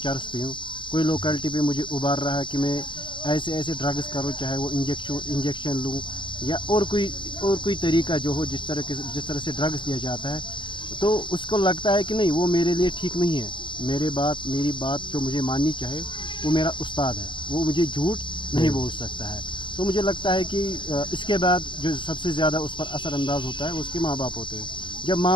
पीऊँ, कोई लोकेलिटी पे मुझे उबार रहा है कि मैं ऐसे ऐसे ड्रग्स करूँ, चाहे वो इंजेक्शन लूँ या और कोई तरीका जो हो, जिस तरह से ड्रग्स दिया जाता है, तो उसको लगता है कि नहीं, वो मेरे लिए ठीक नहीं है। मेरी बात जो मुझे माननी चाहे वो मेरा उस्ताद है, वो मुझे झूठ नहीं बोल सकता है। तो मुझे लगता है कि इसके बाद जो सबसे ज़्यादा उस पर असर अंदाज होता है वो उसके माँ बाप होते हैं। जब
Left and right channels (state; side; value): late; right; 0.23 ms